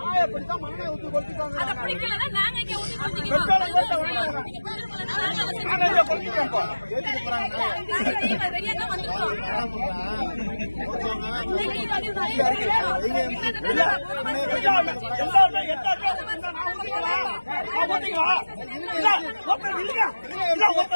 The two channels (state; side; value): inverted; both; correlation -1.00